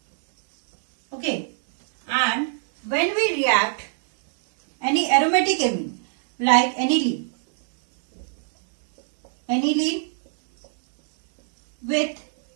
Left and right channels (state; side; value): silent; left; 64 dB below the other